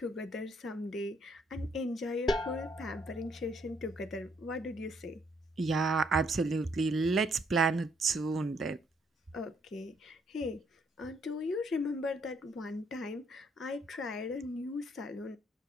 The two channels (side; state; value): both; normal; correlation 0.69